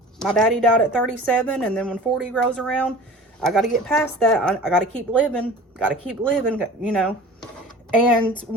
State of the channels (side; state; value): both; normal; correlation 0.41